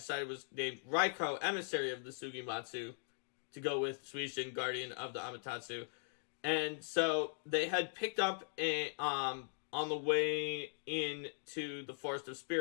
was named Raiko, Emissary of the Sugimatsu, to go with Suishin, Guardian of the Amaterasu. And so they had picked up on the way into the Forest of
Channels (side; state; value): right; silent; digital silence